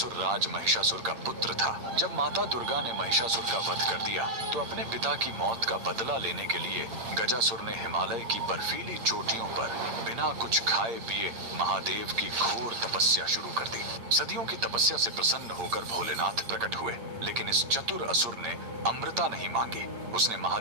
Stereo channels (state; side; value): late; left; 8.8 ms